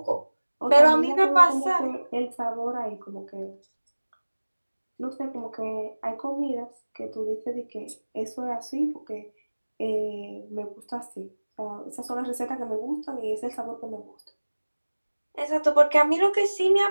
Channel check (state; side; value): inverted; both; correlation -1.00